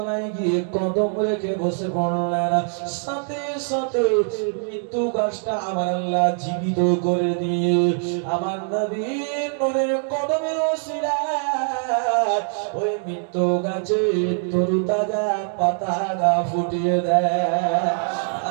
গিয়ে কদম রেখে বসে পড়লেন, সাথে সাথে মৃত্যু গাছটা আমার আল্লাহ জীবিত করে দিয়ে আমার নবীর নূরের কদমের ওসিলায় ওই মৃত্যু গাছে তরুতাজা পাতা গা ফুটিয়ে দেয়।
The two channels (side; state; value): left; silent; 61 dB below the other